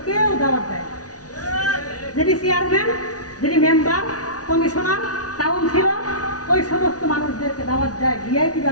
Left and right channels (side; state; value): right; late; 0.68 ms